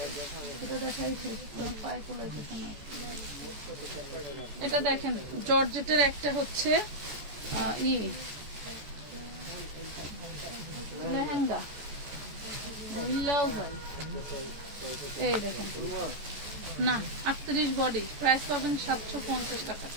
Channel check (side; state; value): left; late; 14 ms